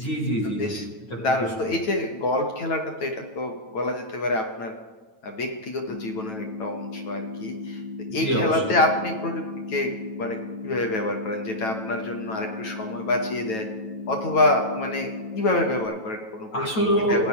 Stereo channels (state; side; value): late; right; 9.1 ms